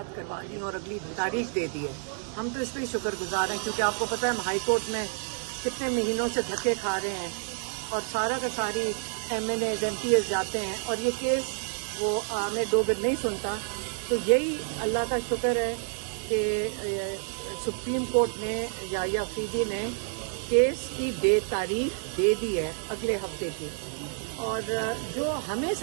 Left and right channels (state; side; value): silent; left; 58 dB below the other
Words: کروا دی اور اگلی تاریخ دے دی ہے. ہم تو اس لیے شکر گزار ہیں کیونکہ آپ کو پتہ ہے ہم ہائی کورٹ میں کتنے مہینوں سے دھکے کھا رہے ہیں اور سارا کا ساری MNAs MPs جاتے ہیں اور یہ کیس وہ ہمیں دو گھر نہیں سنتا. تو یہی اللہ کا شکر ہے کہ سپریم کورٹ نے یا فریدی نے کیس کی تاریخ دے دی ہے اگلے ہفتے کی. اور جو ہمیں